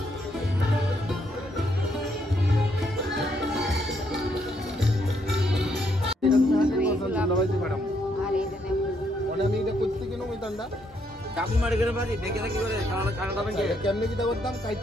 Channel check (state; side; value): normal; both; correlation 0.74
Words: আর এইটা নেব। অনেক এটা করতে কেন ওই দান্দা চাকু মারি করে বাজি দেখে থাকি করে খানা খাবেন কে কেমনে কি দাবার দাম